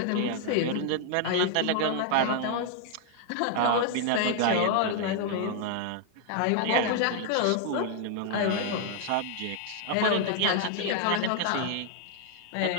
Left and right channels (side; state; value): both; different; correlation 0.00